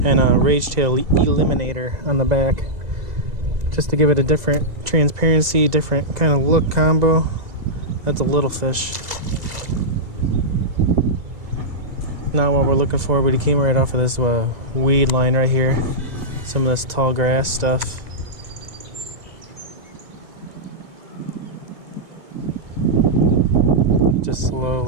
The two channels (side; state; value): left; late; 2.0 ms